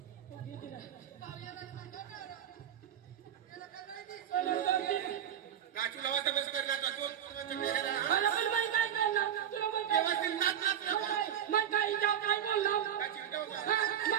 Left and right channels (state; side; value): quieter; left; 9.8 dB